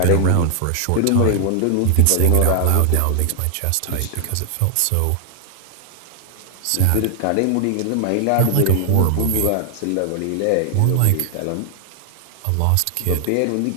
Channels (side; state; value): both; different; correlation 0.00